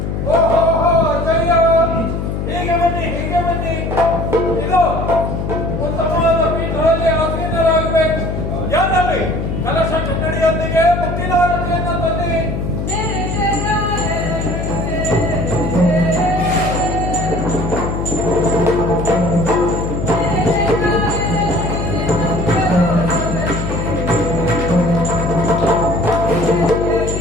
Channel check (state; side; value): noise; left; hum, 3 dB below the sound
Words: ಹೀಗೆ ಬನ್ನಿ ಇದು ಉತ್ತಮವಾದ ಪೀಠದಲ್ಲಿ ಆಸೀನರಾಗಬೇಕು. ಯಾರಲ್ಲಿ ಕಲಶ ಕನ್ನಡಿಯೊಂದಿಗೆ ಮುಕ್ತಿದಾರತೆಯನ್ನು ತಂದಿರಿ.